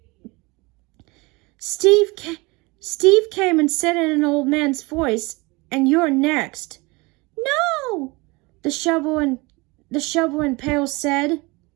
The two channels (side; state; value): left; quieter; 25.1 dB